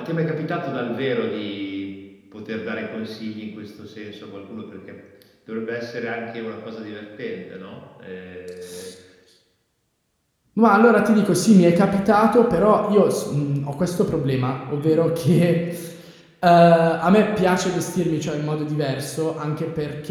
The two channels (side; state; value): both; identical; correlation 1.00